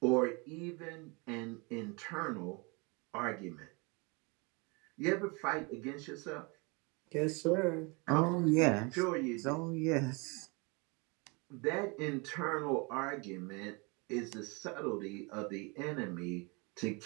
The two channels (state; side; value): quieter; left; 29.7 dB